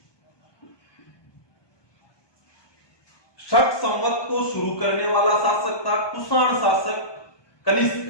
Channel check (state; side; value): late; right; 1.2 ms